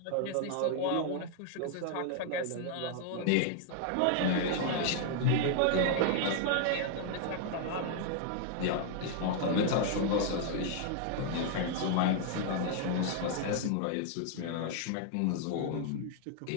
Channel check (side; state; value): both; different; correlation 0.00